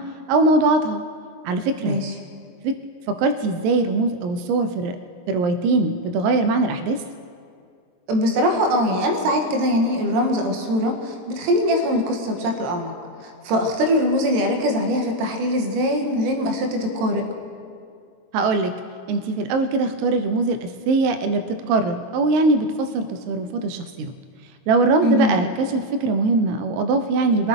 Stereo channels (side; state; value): left; late; 22 ms